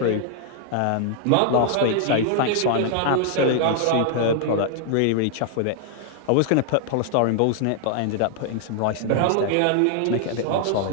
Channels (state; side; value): different; both; correlation -0.01